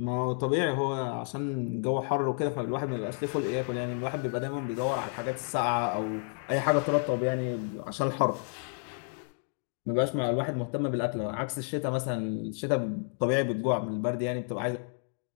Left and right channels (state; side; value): silent; right; 57 dB below the other